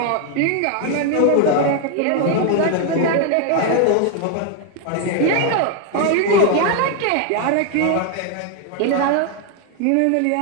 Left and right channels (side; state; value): both; different; correlation 0.01